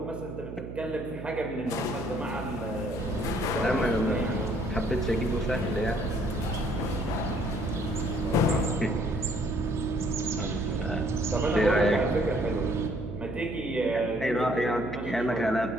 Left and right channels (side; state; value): right; noise; hum, 9 dB below the sound